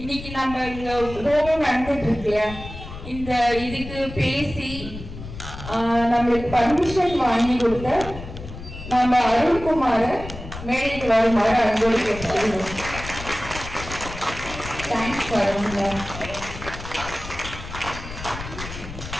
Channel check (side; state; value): left; noise; rumble, 11 dB below the sound